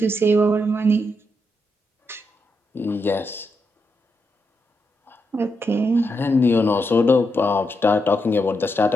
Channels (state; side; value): normal; both; correlation 0.83